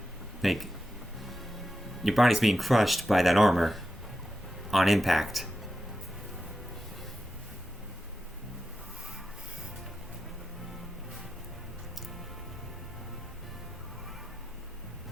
your body's being crushed by that armor on impact.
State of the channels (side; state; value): both; normal; correlation 0.89